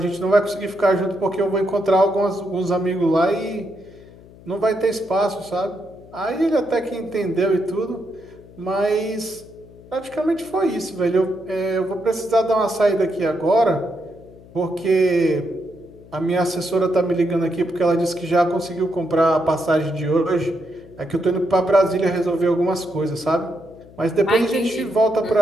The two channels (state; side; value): noise; left; hum, 22 dB below the sound